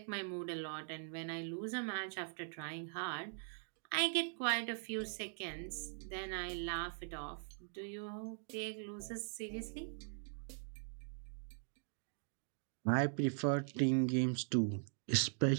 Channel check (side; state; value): left; silent; digital silence